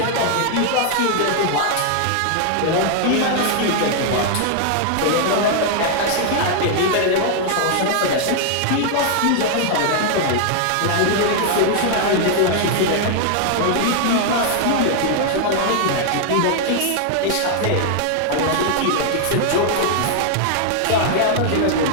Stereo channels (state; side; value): different; both; correlation 0.00